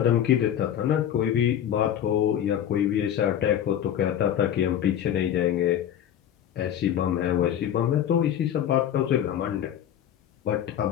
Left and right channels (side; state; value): right; quieter; 10.2 dB